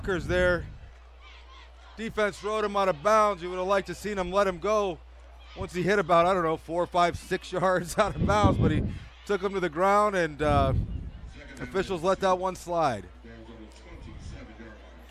there. Defense rode him out of bounds. You would have liked to seen him let him go once he hit about, 4, 5, 6 yards out of bounds, but he took him to the ground, and officials let that one slide.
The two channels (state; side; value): identical; both; correlation 1.00